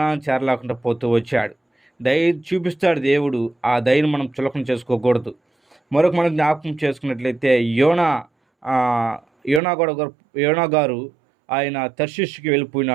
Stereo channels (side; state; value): left; drops out; at 9.6 s